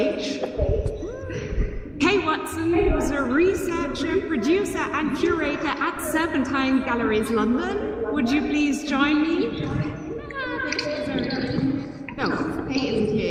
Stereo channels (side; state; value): both; identical; correlation 1.00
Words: Kay Watson, who's a researcher, producer and curator at Serpentine Galleries London. Would you please join me? No, Kay isn't